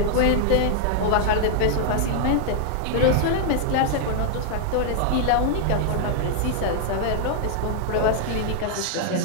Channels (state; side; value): different; both; correlation 0.00